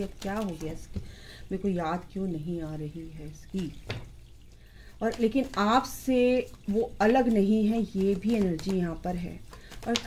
अब क्या हो गया इसकी, मेरे को याद क्यों नहीं आ रही है इसकी। और लेकिन आपसे वो अलग नहीं है, ये भी एनर्जी यहाँ पर है। और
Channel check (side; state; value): both; identical; correlation 1.00